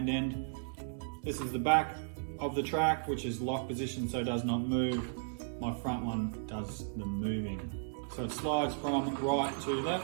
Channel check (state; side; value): silent; left; digital silence